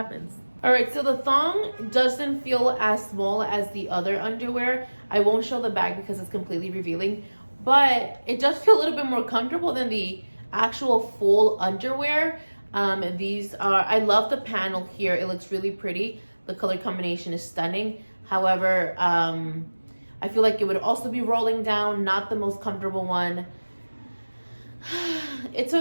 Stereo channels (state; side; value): inverted; both; correlation -1.00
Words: All right, so the thong doesn't feel as small as the other underwear. I won't show the back because it's completely revealing, but it does feel a little bit more comfortable than the actual full underwear. These are, I love the panel here. It looks really pretty. The color combination is stunning. However, I feel like it would also be rolling down, not the most comfortable one. It's